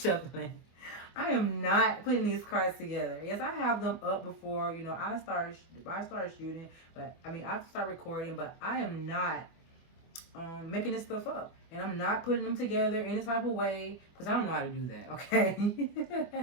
I am not putting these cards together. Yes, I have them up before, I started shooting, but I start recording, but I am not making this stuff up. And I'm not putting them together any type of way, because I don't know how to do that, okay? I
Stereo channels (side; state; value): right; late; 24 ms